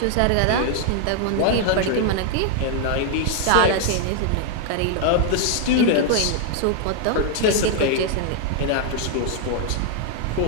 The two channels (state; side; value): different; both; correlation 0.00